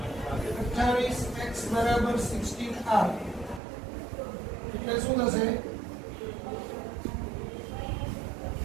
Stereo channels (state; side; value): drops out; left; at 3.6 s